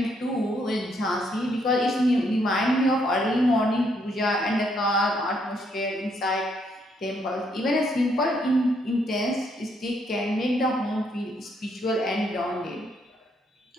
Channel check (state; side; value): normal; both; correlation 0.73